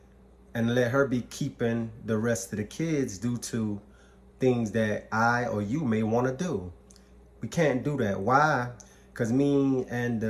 and let her be keeping the rest of the kids due to things that I or you may want to do. We can't do that. Why? Because me and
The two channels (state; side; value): identical; both; correlation 1.00